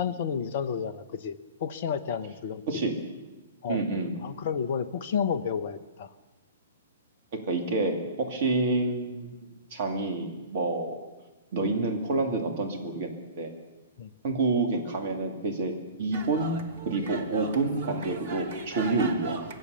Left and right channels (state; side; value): inverted; both; correlation -0.38